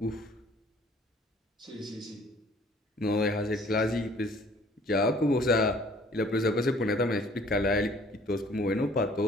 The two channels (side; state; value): both; normal; correlation 0.56